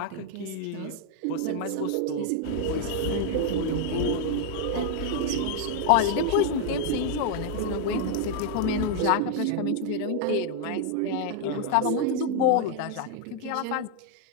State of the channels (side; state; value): both; different; correlation 0.00